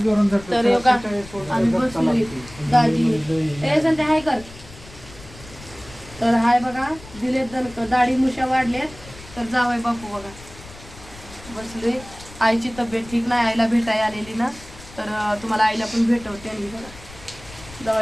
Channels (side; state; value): left; noise; rumble, 19 dB below the sound